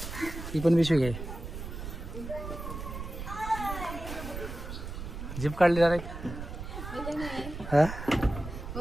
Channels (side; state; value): right; noise; rumble, 8 dB below the sound